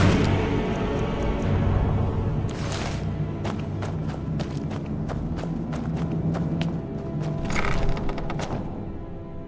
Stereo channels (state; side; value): identical; both; correlation 1.00